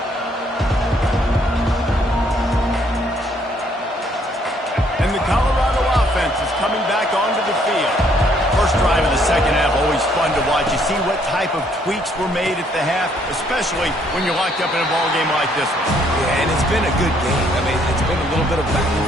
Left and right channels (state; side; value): normal; both; correlation 0.67